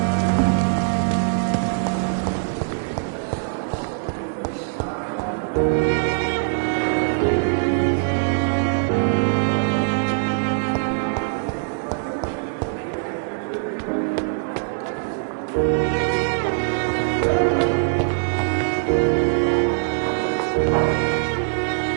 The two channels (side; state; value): left; silent; digital silence